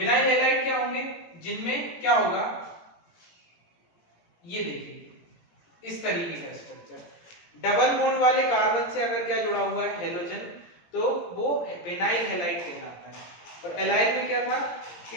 हैलाइड क्या होंगे, जिनमें क्या होगा, ये देखिए इस तरीके का स्ट्रक्चर, डबल बॉन्ड वाले कार्बन से अगर क्या जुड़ा हुआ है हेलोजन, तो वो विनाइल हैलाइड कहलाता है। और एलाइल में क्या था कि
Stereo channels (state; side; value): late; right; 17 ms